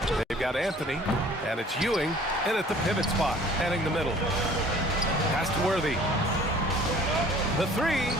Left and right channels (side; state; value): both; normal; correlation 0.52